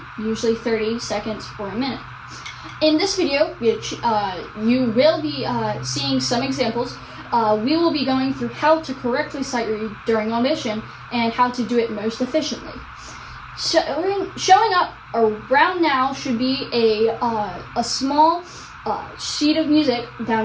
usually 30 seconds or a minute. In this video, which you will be seeing some examples, we will be going through how to correctly sight read during audition and how to do it most efficiently. Showing up around now should be a small sheet of music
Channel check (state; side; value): identical; both; correlation 1.00